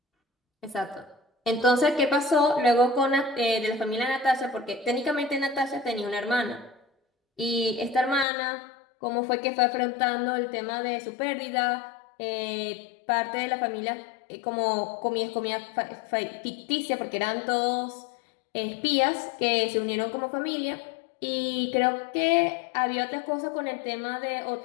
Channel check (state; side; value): drops out; right; at 8.2 s